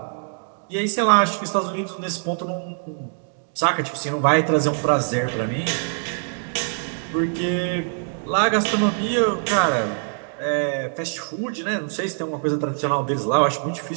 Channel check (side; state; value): left; silent; 63 dB below the other